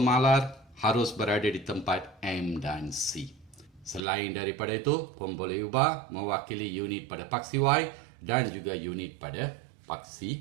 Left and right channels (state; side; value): drops out; left; at 4.0 s